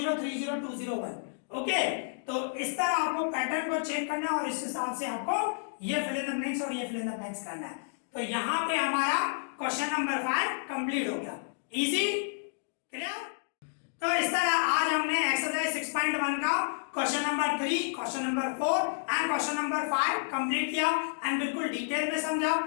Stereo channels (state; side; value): silent; right; digital silence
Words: 3 0 2 0 1, ओके। तो इस तरह आपको पैटर्न को चेक करना है और इस हिसाब से आपको ये फिल इन द ब्लैंक्स और ये फिल इन द ब्लैंक्स करना है। तो यहाँ पे हमारा क्वेश्चन नंबर 5 कंप्लीट हो गया, इजी, क्लियर। तो इस तरह आज हमने एक्सरसाइज 6.1 का question number 3, question number 4 and question number 5 complete किया एंड बिल्कुल डिटेल में समझा।